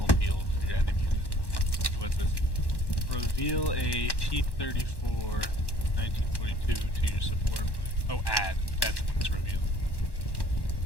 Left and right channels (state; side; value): late; right; 1.1 ms